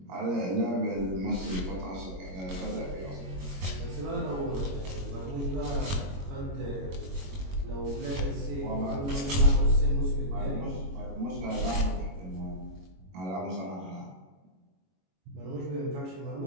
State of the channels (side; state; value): left; late; 22 ms